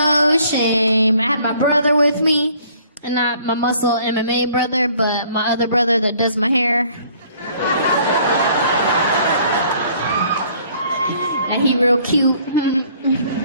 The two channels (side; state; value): both; inverted; correlation -0.59